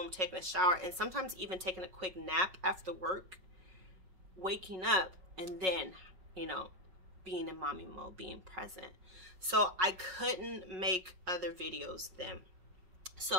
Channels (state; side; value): late; left; 5.4 ms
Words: taking a shower, and sometimes even taking a quick nap after work, waking up, and then, you know, being in mommy mode, being present. So I couldn't make other videos then.